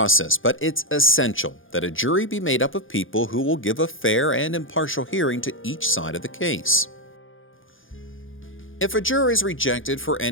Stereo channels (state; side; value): late; right; 0.58 ms